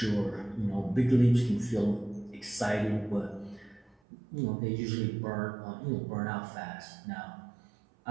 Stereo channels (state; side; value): drops out; left; at 4.0 s